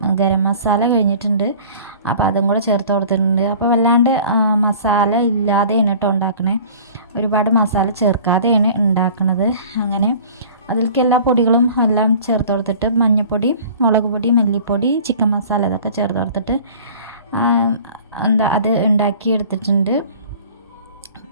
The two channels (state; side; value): inverted; both; correlation -0.45